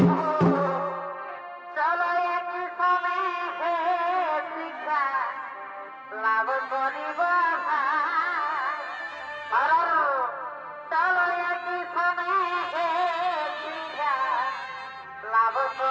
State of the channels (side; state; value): both; identical; correlation 1.00